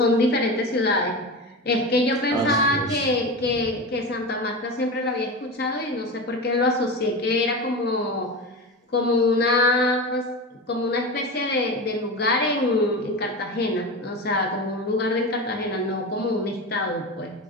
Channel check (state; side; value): normal; both; correlation 0.25